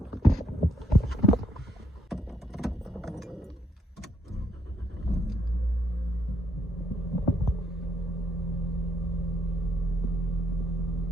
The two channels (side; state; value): both; normal; correlation 0.72